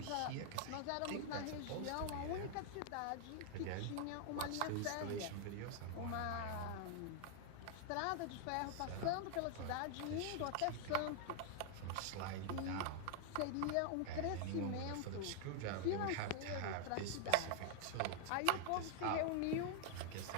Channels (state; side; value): different; both; correlation 0.00